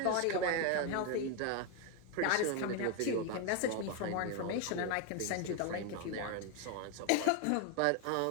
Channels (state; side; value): different; both; correlation 0.01